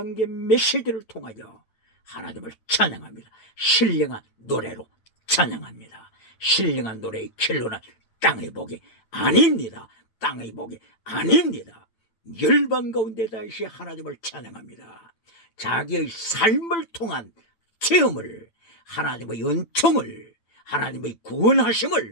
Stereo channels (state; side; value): late; right; 8.9 ms